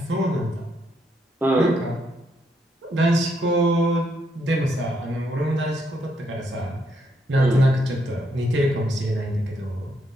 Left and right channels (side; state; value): both; normal; correlation 0.76